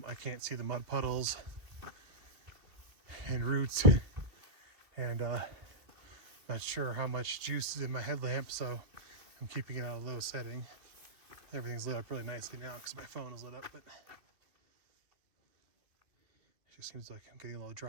I can't see the mud puddles and roots. And Not sure how much juice is in my headlamp, so I'm keeping it on a low setting. Everything's lit up really nicely now because my phone is lit up, but it just seems like I'm getting a little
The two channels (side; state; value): left; late; 2.3 ms